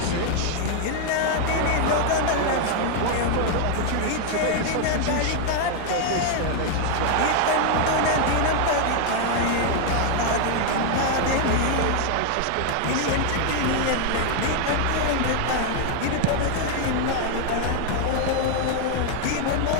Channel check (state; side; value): different; both; correlation 0.00